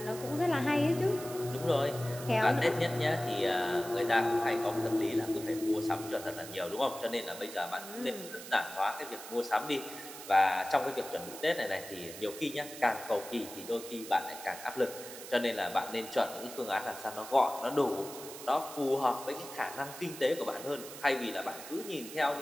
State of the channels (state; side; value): noise; right; hiss, 12 dB below the sound